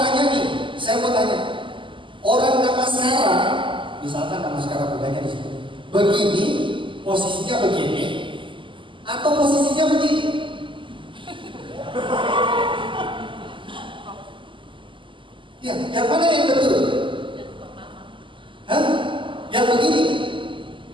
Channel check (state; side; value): late; left; 0.25 ms